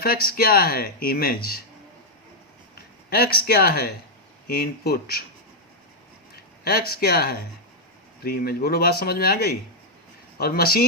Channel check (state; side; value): normal; both; correlation -0.03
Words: क्या है? इमेज। x क्या है? इनपुट। x क्या है? Pre image. बोलो, बात समझ में आ गई? और